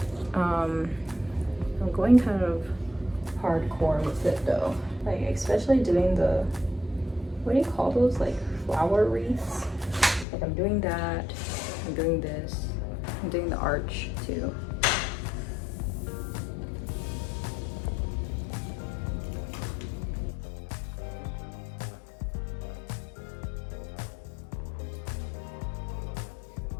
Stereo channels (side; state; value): right; drops out; at 10.2 s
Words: I'm going kind of hardcore with it though, like especially doing the, what do you call those, like flower wreaths? Like I'm doing that, I'm doing this, I'm doing the arch too.